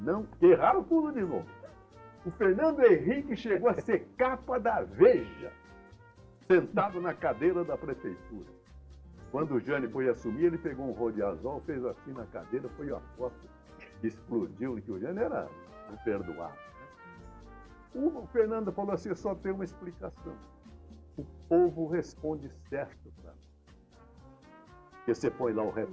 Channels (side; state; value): both; identical; correlation 1.00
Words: não, que erraram tudo de novo. O Fernando Henrique chegou a ser capa da Veja, sentado na cadeira da prefeitura. Quando o Jânio foi assumir, ele pegou um rodiazol, fez assim na cadeira, foi a foto, explodiu, que o Jânio era imperdoável. Né? O Fernando falou assim: só tem uma explicação. O povo responde certo para nós. Porque você põe lá o